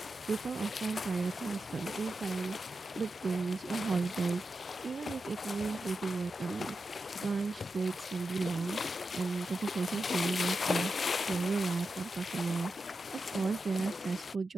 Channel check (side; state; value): both; normal; correlation 0.89